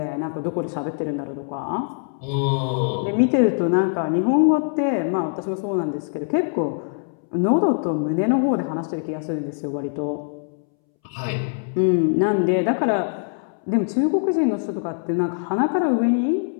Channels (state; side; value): silent; right; 64 dB below the other